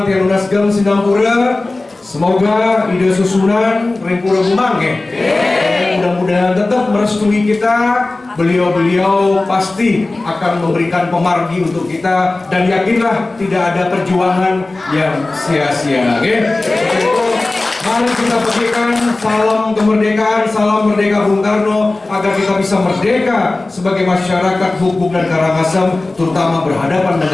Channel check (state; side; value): quieter; right; 3.1 dB